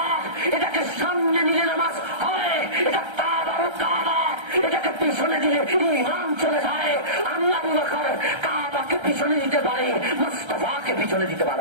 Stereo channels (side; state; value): left; late; 1.3 ms